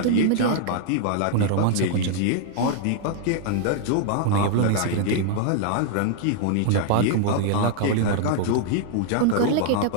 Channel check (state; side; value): different; both; correlation -0.01